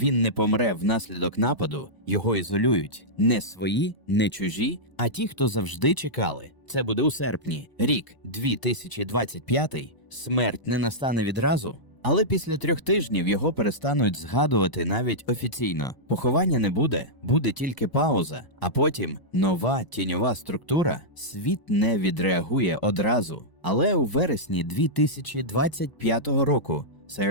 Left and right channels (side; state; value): right; late; 1.0 ms